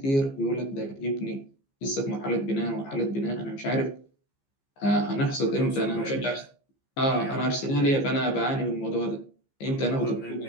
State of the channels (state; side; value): late; right; 15 ms